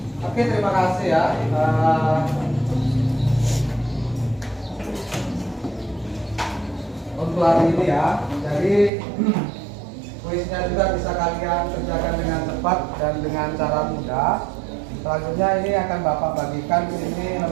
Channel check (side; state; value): left; drops out; at 8.9 s